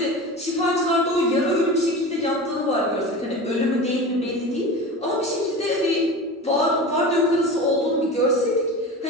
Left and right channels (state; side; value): normal; both; correlation 0.31